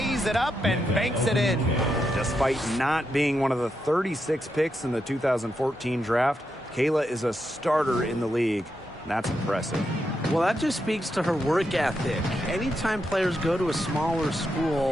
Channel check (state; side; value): normal; both; correlation 0.84